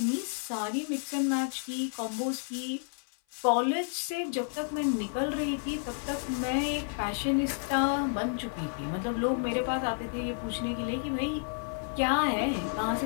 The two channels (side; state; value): right; silent; 56 dB below the other